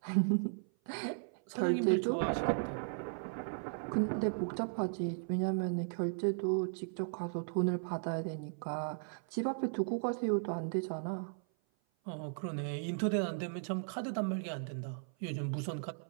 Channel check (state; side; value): silent; left; 54 dB below the other